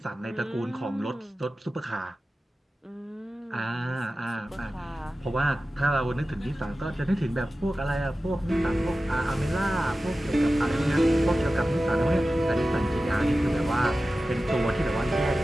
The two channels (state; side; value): normal; both; correlation 0.95